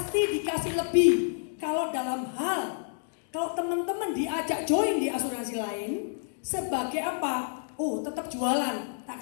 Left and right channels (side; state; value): right; silent; digital silence